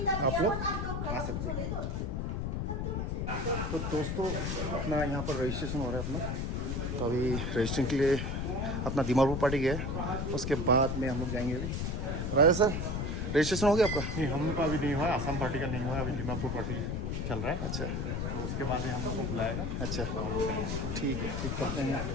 लोग आ सकते हैं। तो दोस्तों अपना यहाँ पर रजिस्ट्रेशन हो रहा है अपना। तो अभी रजिस्ट्रेशन के लिए अपना दीमापुर पार्टी गया, उसके बाद में हम लोग जाएंगे। अभी राजा सर रजिस्ट्रेशन हो गया आपका? नहीं, हम लोग का अभी नहीं हुआ, आसाम पार्टी का नहीं हुआ, अभी दीमापुर पार्टी चल रहा है। अच्छा, तो उसके बाद ही हम लोग को बुलाएगा। अच्छा ठीक है, ठीक करते हैं।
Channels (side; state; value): left; noise; rumble, 1 dB below the sound